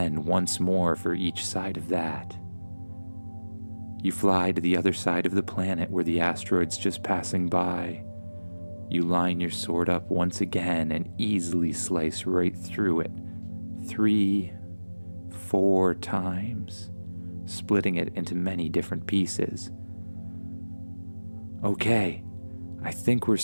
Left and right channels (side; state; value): both; inverted; correlation -1.00